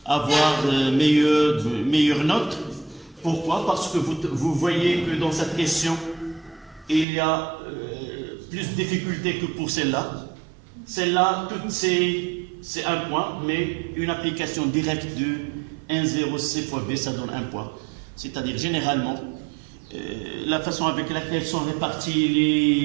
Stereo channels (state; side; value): drops out; left; at 7.1 s